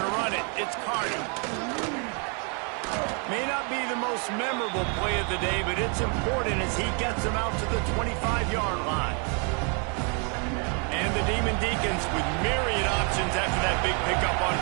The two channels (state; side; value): quieter; left; 37.6 dB